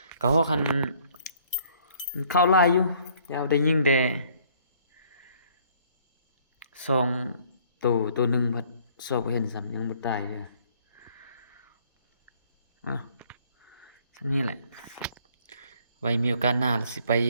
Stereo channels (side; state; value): both; inverted; correlation -0.61